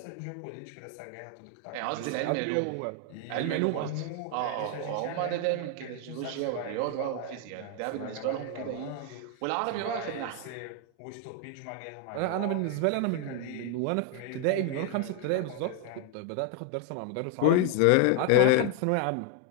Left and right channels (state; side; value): different; both; correlation 0.00